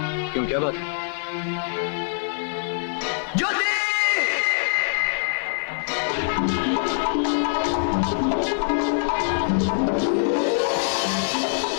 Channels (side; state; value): right; silent; digital silence